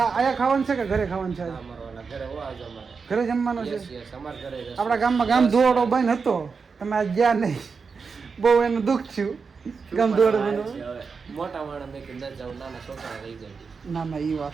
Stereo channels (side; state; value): left; quieter; 5.2 dB